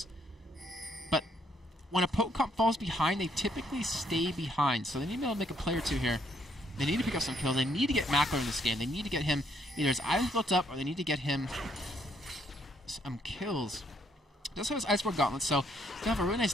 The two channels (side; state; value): both; normal; correlation 0.71